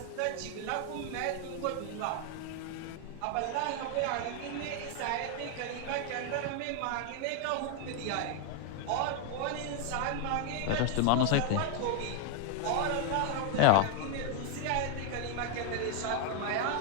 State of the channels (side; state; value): both; different; correlation 0.00